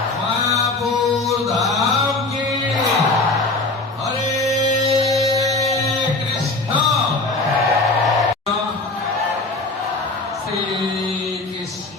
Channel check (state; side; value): quieter; right; 3.2 dB